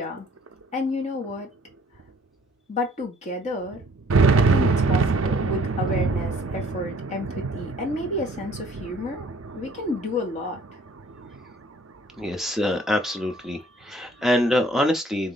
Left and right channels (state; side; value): normal; both; correlation 0.57